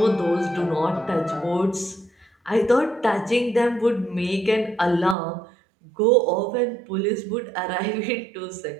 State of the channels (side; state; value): left; drops out; at 5.2 s